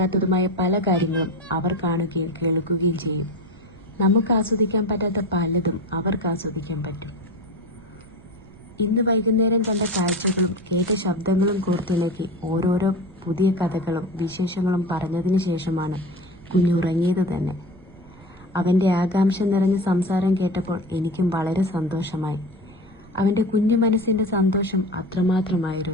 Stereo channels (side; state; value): right; noise; rumble, 23 dB below the sound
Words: പല കാര്യങ്ങളും അവർ കാണുകയും കേൾക്കുകയും ചെയ്യും. നമുക്ക് ആസ്വദിക്കാൻ പറ്റാത്ത പലതും അവർക്ക് ആസ്വദിക്കാൻ പറ്റും. ഇന്ന് വൈകുന്നേരം കണ്ട കാഴ്ചകളും കേട്ട ശബ്ദങ്ങളും കോർത്തിണക്കി ഓരോരോ പുതിയ കഥകളും വിശേഷങ്ങളും പറഞ്ഞതിന് ശേഷമാണ് കുഞ്ഞുറങ്ങിയത് തന്നെ. അവൻ്റെ ആകാംക്ഷ നിറഞ്ഞ സംസാരം കേട്ടപ്പോൾ എനിക്കും വളരെ സന്തോഷമായി. അവൻ്റെ കുഞ്ഞു മനസ്സിൻ്റെ സന്തോഷം